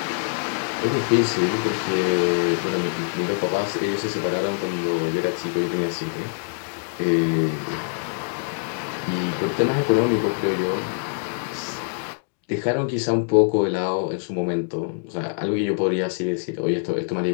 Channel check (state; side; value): silent; right; digital silence